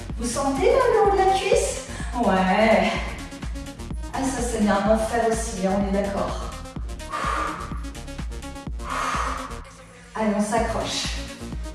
Vous sentez là, le haut de la cuisse? Ouais. Ah, ça c'est bien un enfer aussi, hein, on est d'accord. Allez, on s'accroche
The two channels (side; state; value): both; identical; correlation 1.00